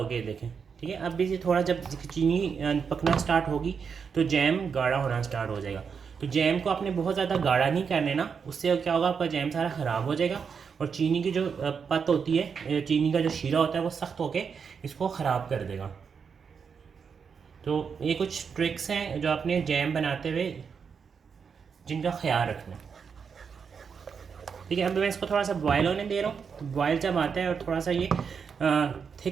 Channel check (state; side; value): quieter; left; 6.2 dB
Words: गया, देखें, ठीक है। अब भी थोड़ा जब चीनी पकना स्टार्ट होगी तो जैम गाढ़ा होना स्टार्ट हो जाएगा। तो जैम को आपने बहुत ज़्यादा गाढ़ा नहीं कर लेना, उससे क्या होगा, आपका जैम सारा ख़राब हो जाएगा और चीनी की जो पत होती है, चीनी का जो शीरा होता है वो सख्त होके इसको ख़राब कर देगा। तो ये कुछ ट्रिक्स हैं जो आपने जैम बनाते हुए जिनका ख्याल रखना, ठीक है। अब मैं इसको थोड़ा सा बॉयल होने दे रहा हूँ। तो बॉयल जब आता है और थोड़ा सा ये